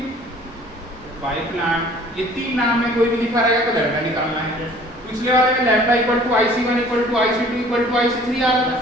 बाय प्लांट। ये तीन नाम में कोई भी लिखा रहेगा तो लैम्डा निकालना है। पिछले वाले में lambda equal to IC1 equal to IC2 equal to IC3 आ रहा था।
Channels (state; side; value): normal; both; correlation 0.52